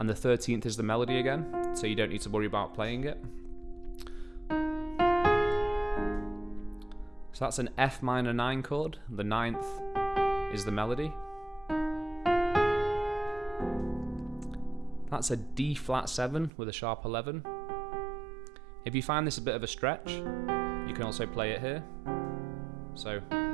the 13th is the melody again, so you don't need to worry about playing it. So that's an F minor 9 chord, the 9th is the melody. That's a D flat 7 with a sharp 11. If you find this a bit of a stretch, you can also play it here. So,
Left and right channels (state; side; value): drops out; left; at 16.5 s